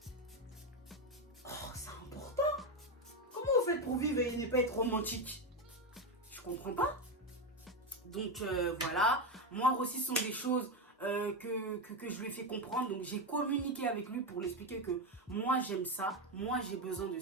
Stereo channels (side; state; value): both; normal; correlation 0.12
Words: Oh, c'est important. Comment vous faites pour vivre et ne pas être romantique? Je comprends pas. Donc voilà, moi aussi, ce sont des choses que je lui ai fait comprendre. Donc j'ai communiqué avec lui pour lui expliquer que moi j'aime ça, moi j'ai besoin de